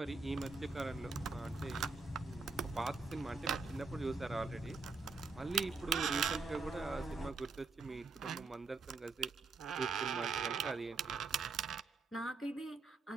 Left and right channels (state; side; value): quieter; left; 4.1 dB